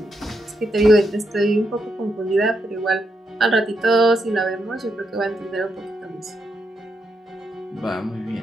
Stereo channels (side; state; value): both; normal; correlation 0.81